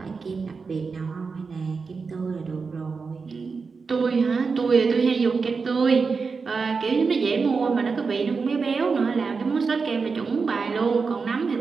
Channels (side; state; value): left; quieter; 4.9 dB